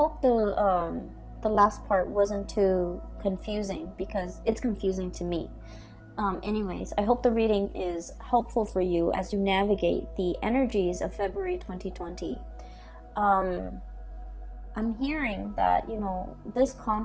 the last part wasn't too confusing, because it's confusing to me. Anyways, I hope the reading is helpful for you as you navigate the energies of February 2020. I'm hearing that, you know, this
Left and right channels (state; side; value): identical; both; correlation 1.00